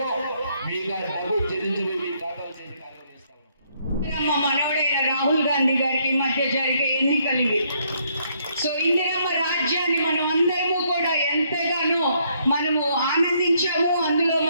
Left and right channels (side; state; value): both; inverted; correlation -0.70